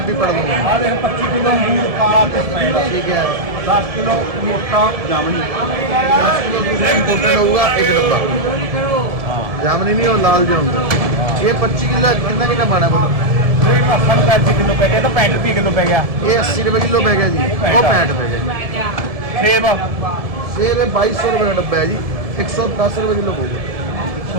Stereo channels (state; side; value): late; left; 1.7 ms